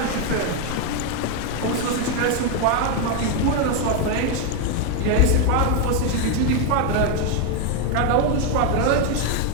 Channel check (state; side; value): different; both; correlation 0.01